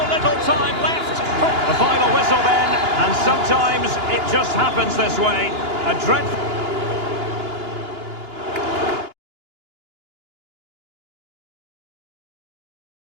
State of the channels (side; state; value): left; late; 2.9 ms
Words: little time left. The final whistle then. And sometimes it just happens this way. A dreadful...